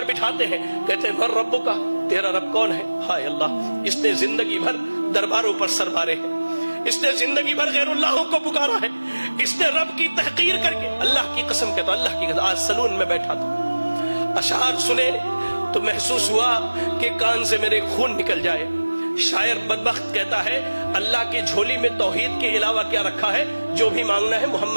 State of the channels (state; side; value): inverted; both; correlation -1.00